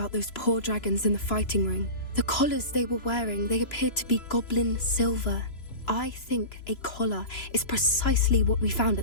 those poor dragons in the fighting ring. The collars they were wearing, they appeared to be goblin silver. I think a collar is precisely what we found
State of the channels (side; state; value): right; late; 3.0 ms